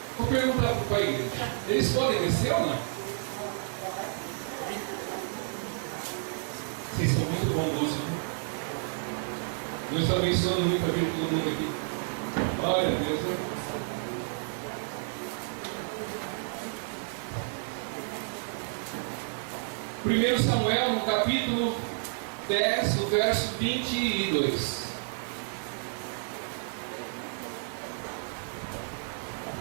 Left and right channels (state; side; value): silent; left; 56 dB below the other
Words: Vou perguntar para a igreja: eles podem descer ou não? Vocês são muito bondosos, né? Deus está abençoando muito a vida de todo mundo aqui. Glória a Deus, né? Primeiro Samuel, no capítulo 10, no verso 22.